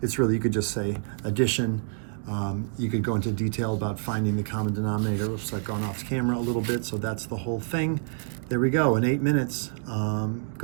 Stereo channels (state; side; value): silent; left; digital silence